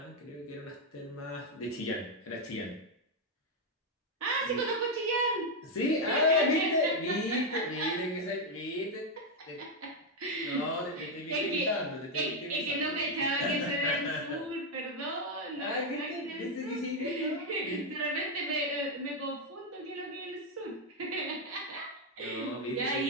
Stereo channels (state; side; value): normal; both; correlation 0.03